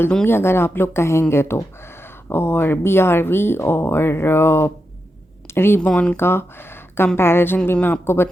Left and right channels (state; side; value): normal; both; correlation 0.87